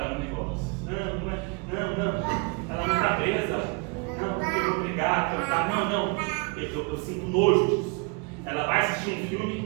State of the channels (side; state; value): left; quieter; 30.1 dB